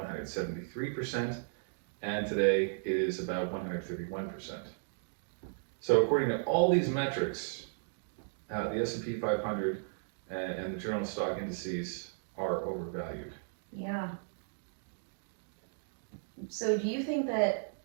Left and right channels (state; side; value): silent; left; digital silence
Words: and today it is about 131%. So according to all these metrics, the S&P 500 and the journal stock indices are overvalued. Yeah. So do you think that